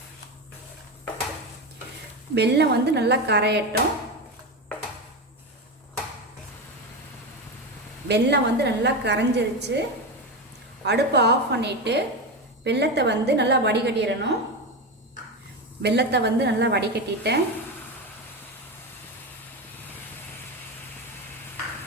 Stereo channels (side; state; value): both; normal; correlation 0.17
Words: வெல்லம் நல்லா கரையட்டும். வெல்லம் நல்லா கரைஞ்சிருச்சு. அடுப்பை ஆஃப் பண்ணிட்டு வெல்லத்தை நல்லா வடிகட்டிடணும். வெல்லத்தை நல்லா வடிகட்டிட்டேன்.